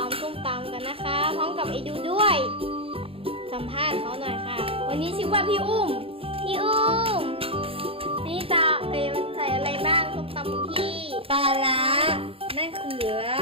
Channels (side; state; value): left; late; 0.27 ms